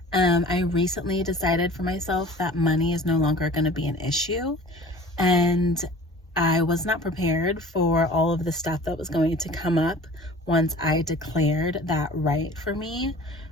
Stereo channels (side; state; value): both; normal; correlation 0.44